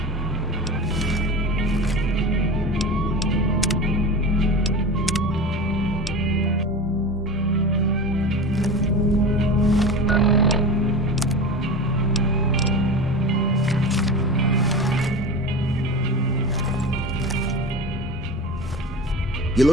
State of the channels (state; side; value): normal; both; correlation 0.29